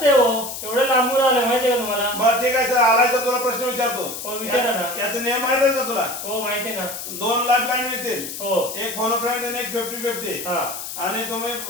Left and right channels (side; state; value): left; noise; hiss, 8 dB below the sound